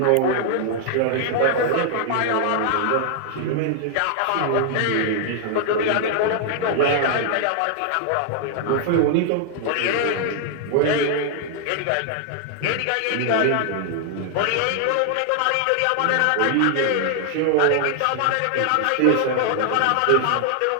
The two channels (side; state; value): both; different; correlation 0.00